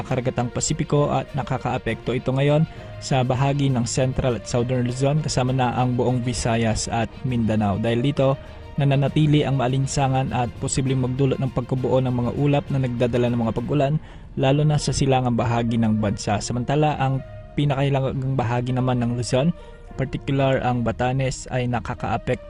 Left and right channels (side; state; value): both; identical; correlation 1.00